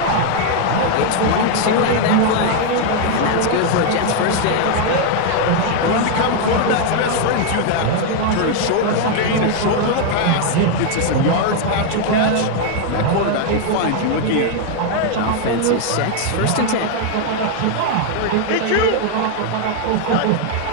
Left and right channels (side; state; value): both; different; correlation 0.00